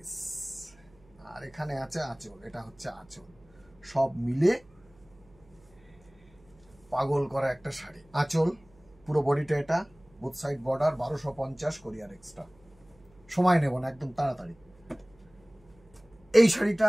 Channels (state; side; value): noise; right; hum, 29 dB below the sound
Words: আর এখানে আছে আঁচল। এটা হচ্ছে আঁচল, সব মিলে পাগল করা একটা শাড়ি। আঁচল, পুরো বডিটা এটা, বোথ সাইড বর্ডার, 1250 কোরিয়ার এক্সট্রা। সময় নেব না, একদম তাড়াতাড়ি। এই